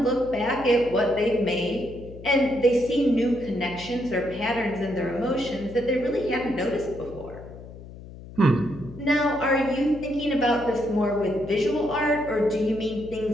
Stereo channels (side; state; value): left; noise; hum, 16 dB below the sound